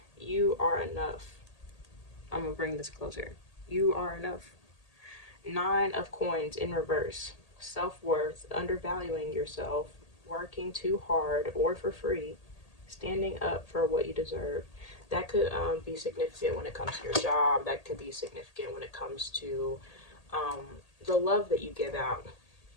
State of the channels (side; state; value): right; late; 1.8 ms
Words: You are enough. I'm gonna bring this closer. You are enough. Nine of Coins in reverse. Self-worth, undervaluing yourself, working too hard or for free, standing up for what you deserve. That could be significant when it comes to your job. That could be significant when it comes to the love that you give out.